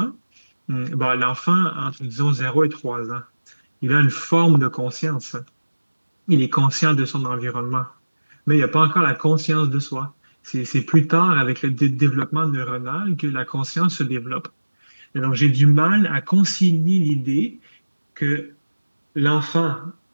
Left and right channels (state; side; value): inverted; both; correlation -1.00